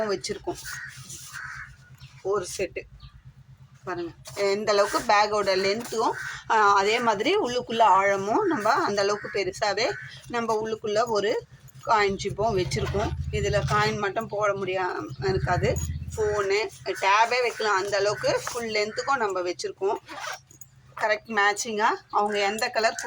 வச்சுருக்கோம். ஒரு செட்டு பாருங்கள், எந்த அளவுக்கு பேக்கோட லென்த்தும் அதே மாதிரி உள்ளுக்குள்ளே ஆழமும் நம்ம அந்தளவுக்கு பெருசாகவே நம்ம உள்ளுக்குள்ளே ஒரு காயின் ஜிப்பும் வச்சுருக்கோம். இதில் காயின் மட்டும் போட முடியாமல் இருக்காது. ஃபோனு டேபே வைக்கலாம். அந்தளவுக்கு ஃபுல் லென்த்துக்கும் நம்ம வச்சுருக்கோம். கரெக்ட் மேட்சிங்காக அவங்க எந்த கலர்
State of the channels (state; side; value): identical; both; correlation 1.00